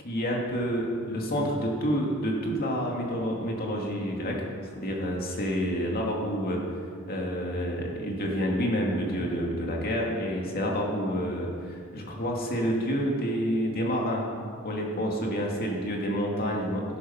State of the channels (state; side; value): normal; both; correlation 0.50